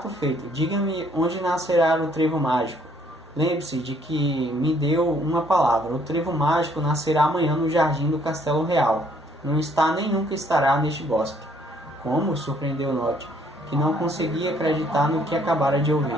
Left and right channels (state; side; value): normal; both; correlation 0.64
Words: feito. Diga-me onde nascerá o trevo mágico. Lembre-se de que me deu uma palavra. O trevo mágico nascerá amanhã no jardim do Castelo Real. Não está nem nunca estará neste bosque. Como? Surpreendeu Nod, que não conseguia acreditar no que acabara de ouvir.